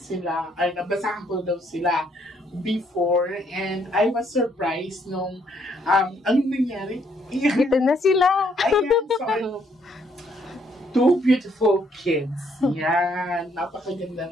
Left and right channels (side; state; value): both; normal; correlation 0.69